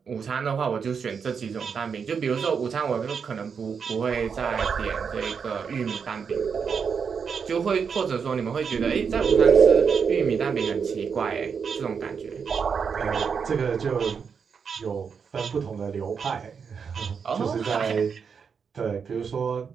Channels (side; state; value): left; quieter; 6.3 dB